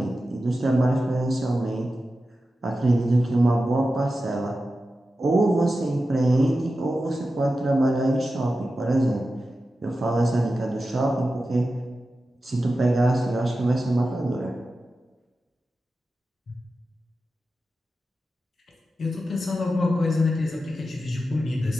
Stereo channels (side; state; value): both; normal; correlation 0.92